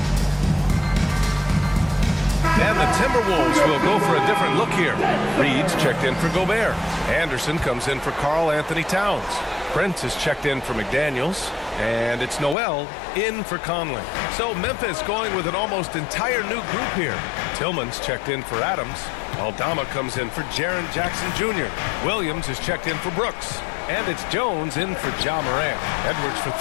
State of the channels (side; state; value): right; drops out; at 12.6 s